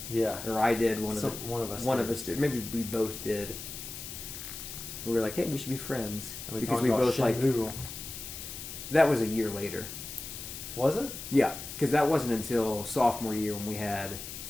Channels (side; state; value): left; noise; hiss, 9 dB below the sound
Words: Yeah. Or I did. One of us did. Maybe we both did. We were like, hey, we should be friends, And because we both Shenmue. That was a year later. Was it? Yeah, because that wasn't until sophomore year when we had